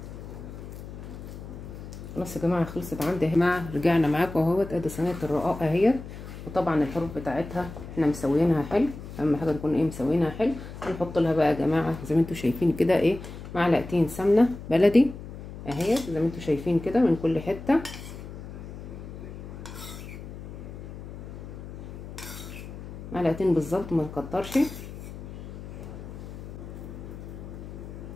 خلاص يا جماعه خلصت عندي يا جماعه. رجعنا معاكم اهوت، ادي صينيه الرقاق اهيت، وطبعا الحروف بتاعتها احنا مسويينها حلو. اهم حاجه نكون ايه مسويينها حلو. هنحط لها بقى يا جماعه زي ما انتم شايفين كده ايه معلقتين سمنه بلدي اهيت زي ما انتم شايفين كده من كل حته. معلقتين بالظبط ما نكترش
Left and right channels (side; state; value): left; noise; hum, 12 dB below the sound